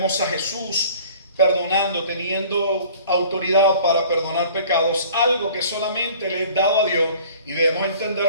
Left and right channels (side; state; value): both; inverted; correlation -0.49